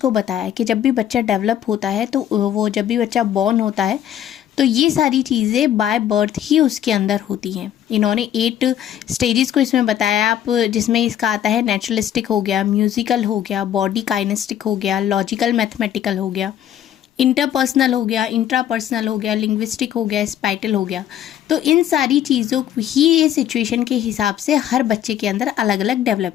बताया कि जब भी बच्चा डेवलप होता है तो वो जब भी बच्चा बॉर्न होता है तो ये सारी चीज़ें बाय बर्थ ही उसके अंदर होती हैं। इन्होंने 8 स्टेजेस को इसमें बताया, आप जिसमें इसका आता है नेचुरलिस्टिक हो गया, म्यूजिकल हो गया, बॉडी काइनेस्टिक हो गया, लॉजिकल मैथमेटिकल हो गया, इंटरपर्सनल हो गया, इंट्रापर्सनल हो गया, लिंग्विस्टिक हो गया, स्पाइटल हो गया। तो इन सारी चीज़ों ही ये सिचुएशन के हिसाब से हर बच्चे के अंदर अलग अलग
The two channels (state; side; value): quieter; right; 10.7 dB